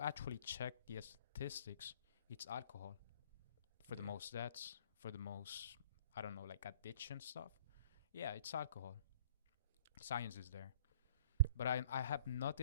actually check the statistics, it's alcohol for the most deaths, for the most, I don't know, like addiction stuff. Yeah, it's alcohol. Science is there. But I have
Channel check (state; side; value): inverted; both; correlation -0.51